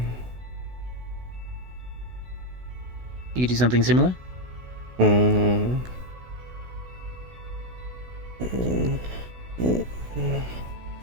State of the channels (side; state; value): left; late; 16 ms